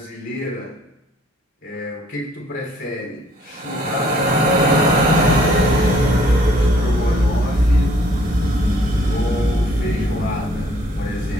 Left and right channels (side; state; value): both; normal; correlation 0.61